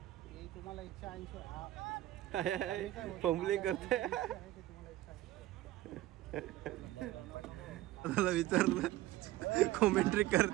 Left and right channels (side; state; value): left; quieter; 15.6 dB